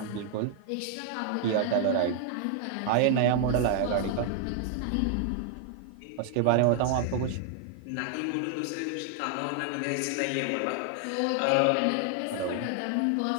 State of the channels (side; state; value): both; different; correlation 0.00